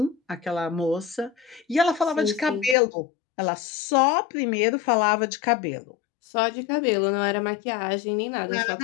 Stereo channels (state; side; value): drops out; right; at 2.8 s